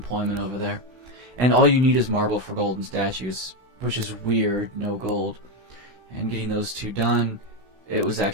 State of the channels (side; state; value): left; late; 16 ms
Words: over there. And all you need is marble for golden statues, which is weird, no gold. And getting those two done, it was